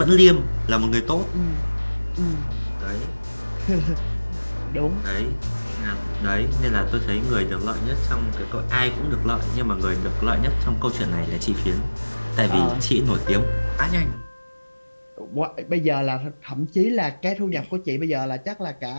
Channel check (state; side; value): inverted; both; correlation -1.00